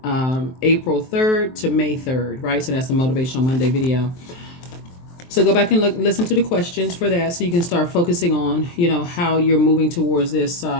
April 3rd to May 3rd, right? So that's the Motivational Monday video. So go back and listen to the questions for that, so you can start focusing on, how you're moving towards this,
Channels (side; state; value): right; late; 23 ms